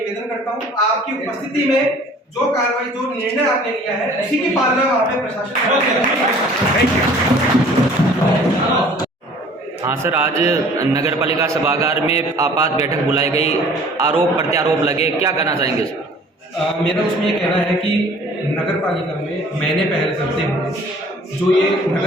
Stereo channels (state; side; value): normal; both; correlation 0.51